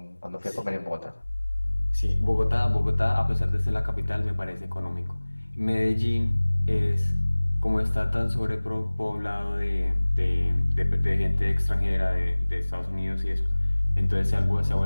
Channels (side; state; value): both; inverted; correlation -1.00